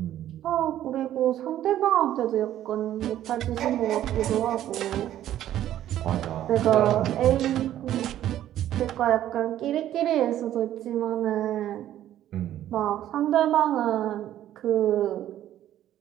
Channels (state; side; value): quieter; left; 12.2 dB